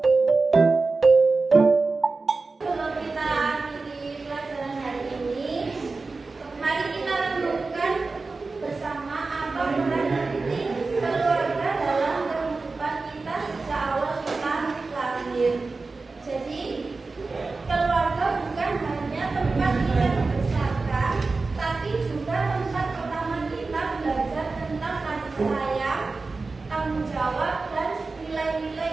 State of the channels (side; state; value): left; quieter; 3.9 dB